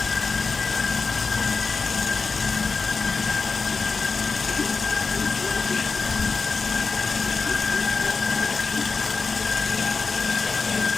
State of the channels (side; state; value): right; quieter; 4.6 dB